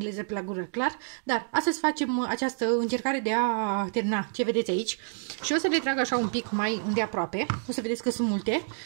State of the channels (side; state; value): left; silent; digital silence